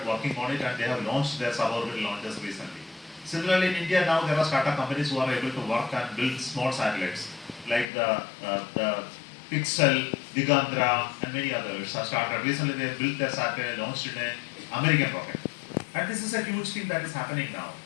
working on it, and they have launched their suborbital launches recently. Similarly, in India now there are startup companies who are able to work and build small satellites, like the Pixel, Digandra, and many others have started. Recently, they built their satellite, launched in an American rocket. And this is a huge thing that is happening now.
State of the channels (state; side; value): drops out; right; at 7.9 s